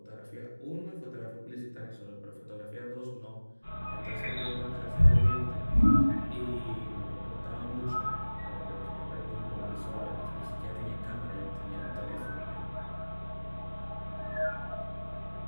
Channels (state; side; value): inverted; both; correlation -1.00